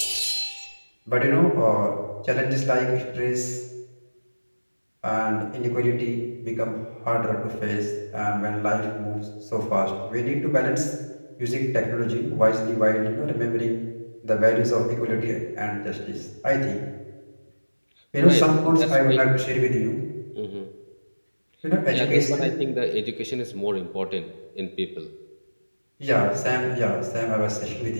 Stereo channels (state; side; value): inverted; both; correlation -1.00